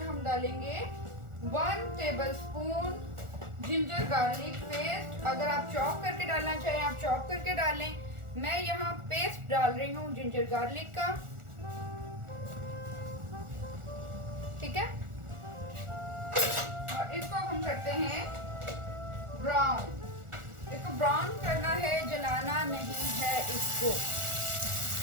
हम डालेंगे 1 table spoon ginger garlic paste. अगर आप चॉप करके डालना चाहें आप चॉप करके डालें। मैं यहाँ पेस्ट डाल रही हूँ जिंजर गार्लिक का। ठीक है, और इसको हम करते हैं ब्राउन। इसको ब्राउन करना है, जलाना नहीं है इसको।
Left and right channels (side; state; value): left; late; 1.4 ms